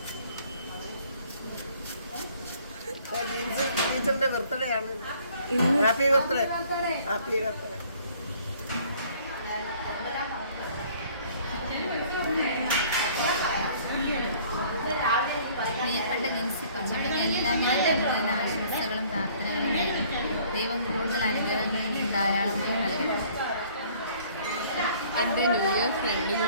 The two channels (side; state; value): both; inverted; correlation -0.57